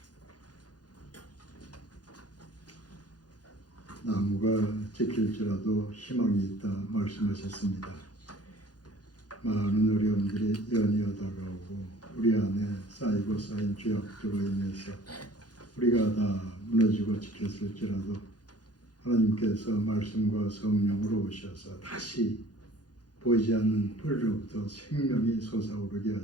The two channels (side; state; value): right; late; 0.69 ms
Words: 나무가 지킬지라도 희망이 있다 말씀하셨습니다. 많은 어려움들이 연이어 다가오고 우리 안에 쌓이고 쌓인 죄악들로 인해서 우리가 다 무너지고 지켰을지라도 하나님께서 말씀과 성령으로 오셔서 다시 보이지 않는 뿌리로부터 생명이 솟아오르게